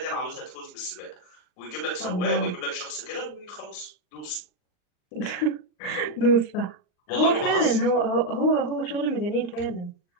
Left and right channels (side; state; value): right; late; 39 ms